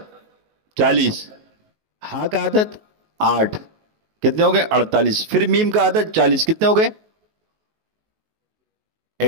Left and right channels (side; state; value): left; late; 19 ms